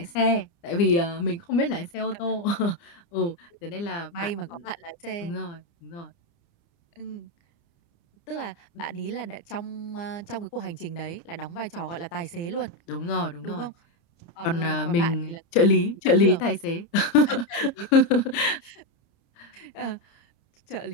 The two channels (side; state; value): right; late; 29 ms